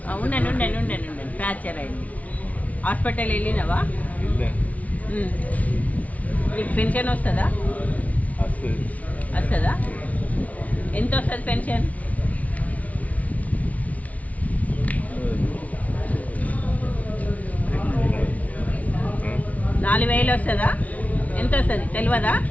ఉండండి ఫ్రాక్చర్ అయింది. హాస్పిటల్ వెళ్ళినావా? నీకు పెన్షన్ వస్తుందా? వస్తుందా? ఎంత వస్తుంది పెన్షన్? నాలుగు వేలు వస్తుందా? ఎంత వస్తుంది తెలియదా?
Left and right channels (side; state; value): right; late; 0.070 ms